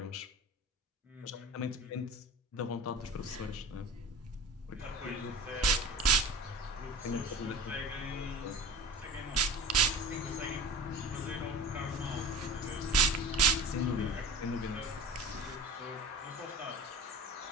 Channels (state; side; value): normal; both; correlation 0.35